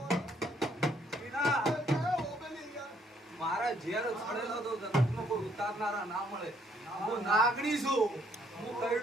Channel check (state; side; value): normal; both; correlation 0.68